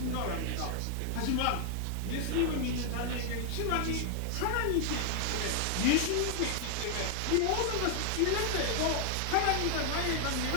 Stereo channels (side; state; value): both; different; correlation 0.00